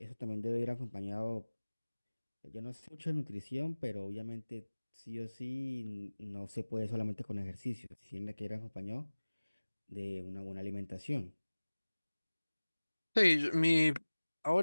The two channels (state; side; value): inverted; both; correlation -1.00